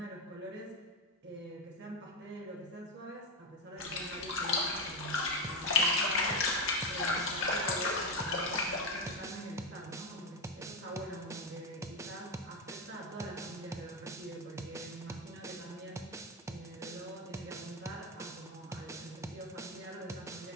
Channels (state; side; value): normal; both; correlation 0.09